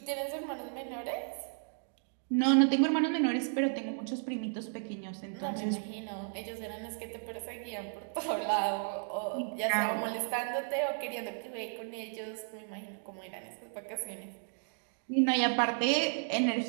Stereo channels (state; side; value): silent; left; digital silence